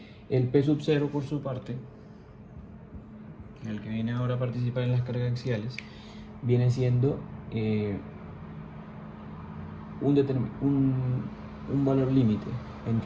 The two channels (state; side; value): identical; both; correlation 1.00